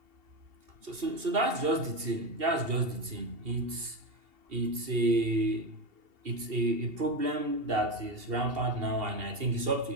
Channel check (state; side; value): late; left; 2.7 ms